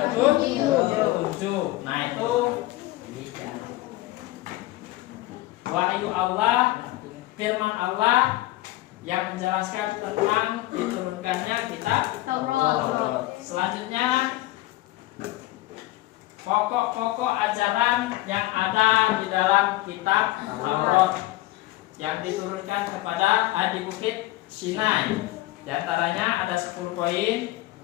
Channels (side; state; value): right; quieter; 17.7 dB